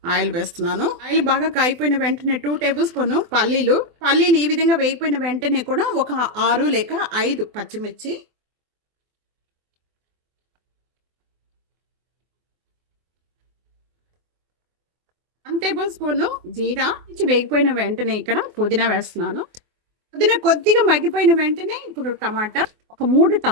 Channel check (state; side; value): late; left; 24 ms